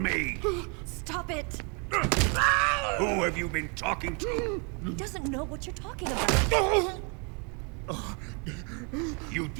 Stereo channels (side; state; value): left; quieter; 35.1 dB